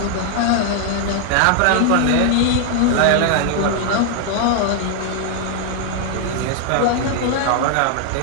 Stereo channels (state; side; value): different; both; correlation 0.00